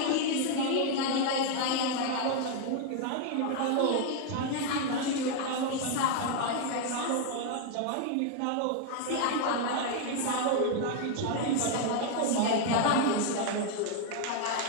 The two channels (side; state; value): both; different; correlation 0.00